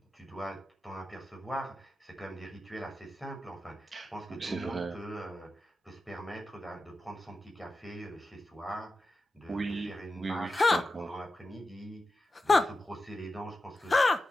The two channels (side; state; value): both; normal; correlation 0.91